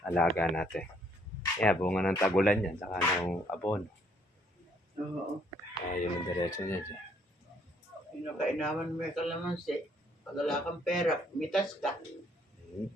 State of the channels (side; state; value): both; normal; correlation 0.66